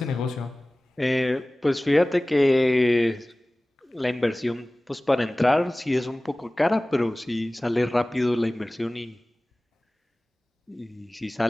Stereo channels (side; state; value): both; normal; correlation 0.98